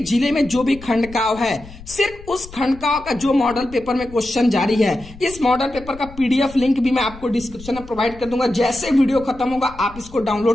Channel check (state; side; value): noise; left; rumble, 18 dB below the sound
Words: जिले में जो भी खंडकाव्य है सिर्फ उस खंडकाव्य का जो मॉडल पेपर में क्वेश्चन जारी है, इस मॉडल पेपर का पीडीएफ लिंक भी मैं आपको डिस्क्रिप्शन में प्रोवाइड कर दूंगा। जैसे वीडियो खत्म होगा आप इसको